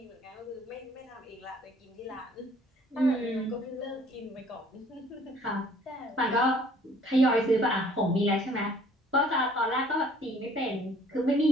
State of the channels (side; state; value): both; normal; correlation 0.57